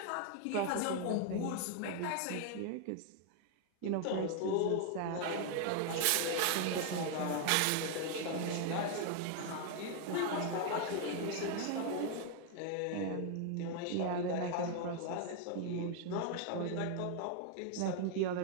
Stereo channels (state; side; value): different; both; correlation 0.00